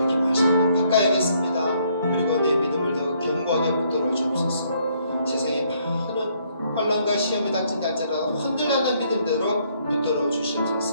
말씀을 바꿔야겠습니다. 그리고 내 믿음을 더 견고하게 붙들어 주옵소서. 세상에 많은 환난과 시험이 닥친다 할지라도 흔들리는 믿음대로 붙들어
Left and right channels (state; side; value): inverted; both; correlation -0.69